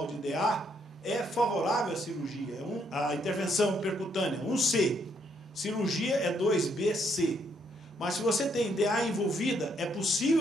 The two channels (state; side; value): normal; both; correlation 0.72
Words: de DA, é favorável à cirurgia, a intervenção percutânea, 1C. Cirurgia é 2BC. Mas se você tem DA envolvida, é